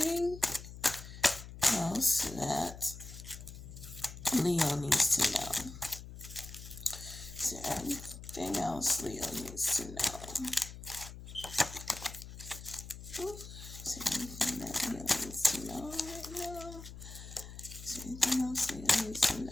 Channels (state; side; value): noise; left; hum, 13 dB below the sound